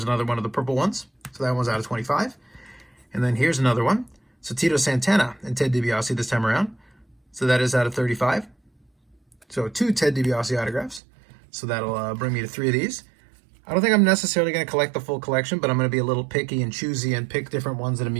another one of the purple ones. So that one's out of 25. And then here's another one. So Tito Santana and Ted DiBiase this time around. So that is out of 35. So 2 Ted DiBiase autographs. So that'll bring me to 3 of these. I don't think I'm necessarily going to collect the full collection, but I'm going to be a little picky and choosy and pick different ones that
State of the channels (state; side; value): drops out; left; at 11.0 s